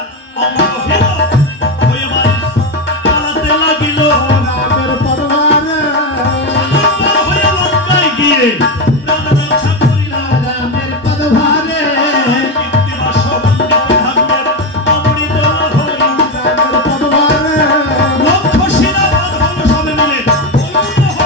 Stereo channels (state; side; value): normal; both; correlation 0.12